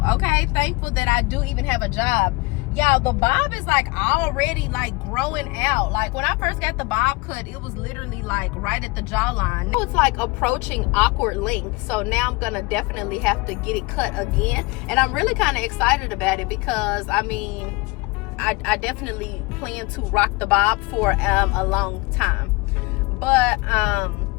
okay? Thankful that I do even have a job. Y'all, the bob is like already like growing out. Like, when I first got the bob cut, it was literally like right at the jawline. Now it's like approaching awkward length. So now I'm gonna definitely have to get it cut again. And I'm really kind of excited about it, because I mean, I definitely plan to rock the bob for a long time. But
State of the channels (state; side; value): quieter; right; 24.6 dB